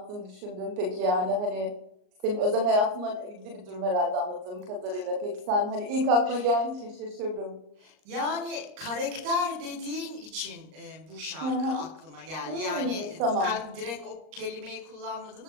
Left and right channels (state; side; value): late; left; 38 ms